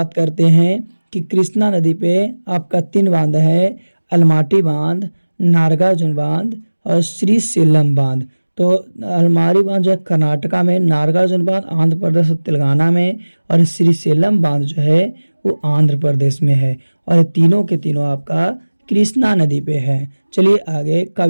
करते हैं कि कृष्णा नदी पे आपका 3 बांध है, अलमाटी बांध, नागार्जुन बांध और श्रीशैलम बांध। तो अलमारी बांध जो है कर्नाटका में, नागार्जुन बांध आंध्र प्रदेश और तेलंगाना में, और श्रीशैलम बांध जो है वो आंध्र प्रदेश में है। और तीनों के तीनों आपका कृष्णा नदी पे है। चलिए आगे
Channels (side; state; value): both; inverted; correlation -1.00